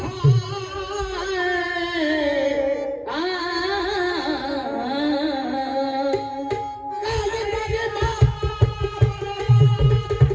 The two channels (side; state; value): both; identical; correlation 1.00